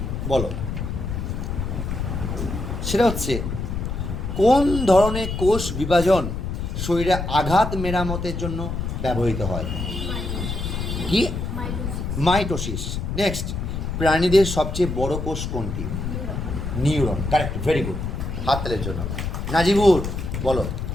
বলো, সেটা হচ্ছে কোন ধরনের কোষ বিভাজন শরীরে আঘাত মেরামতের জন্য ব্যবহৃত হয়? কি? মাইটোসিস। নেক্সট, প্রাণীদের সবচেয়ে বড় কোষ কোনটি? নিউরন। কারেক্ট, ভেরি গুড, হাততালির জন্য। নাজিবুর বলো।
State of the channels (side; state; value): left; noise; rumble, 4 dB below the sound